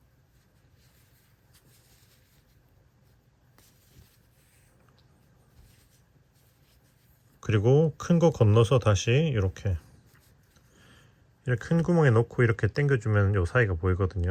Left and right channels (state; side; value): identical; both; correlation 1.00